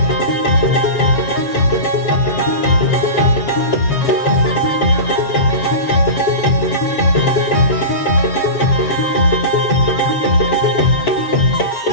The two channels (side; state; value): right; late; 7.3 ms